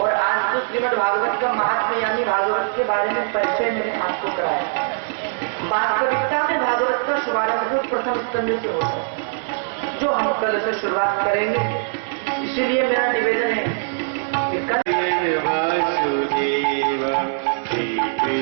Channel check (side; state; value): left; silent; digital silence